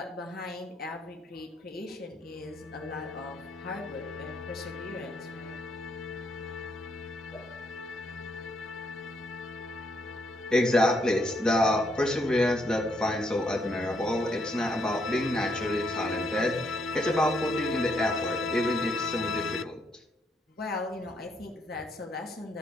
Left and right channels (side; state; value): both; normal; correlation 0.74